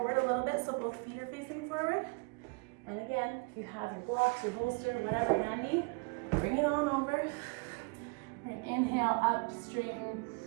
a little bit so both feet are facing forward. And again, if you have your blocks, your bolster, whatever handy, bring it on over. Right, inhale, up, straighten,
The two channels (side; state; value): left; quieter; 32.4 dB